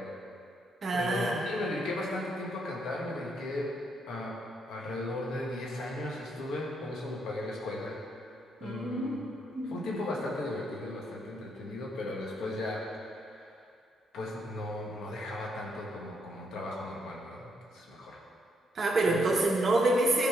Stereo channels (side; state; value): both; normal; correlation 0.75